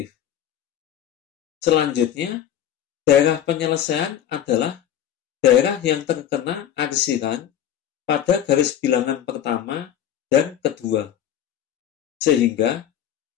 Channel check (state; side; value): quieter; right; 10.3 dB